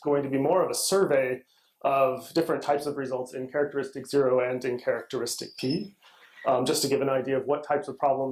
going to be more of a survey of different types of results in characteristic 0 and in characteristic P, just to give an idea of what types of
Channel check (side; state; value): both; identical; correlation 1.00